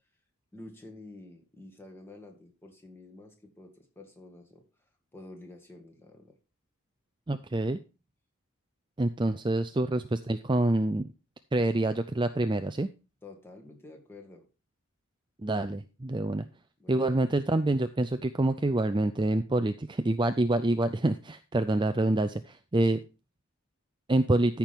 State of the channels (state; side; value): normal; both; correlation 0.81